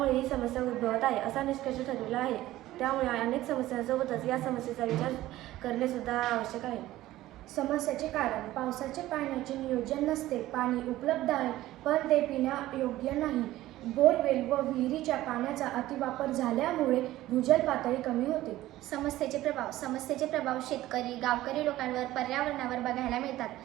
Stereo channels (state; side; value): quieter; left; 15.6 dB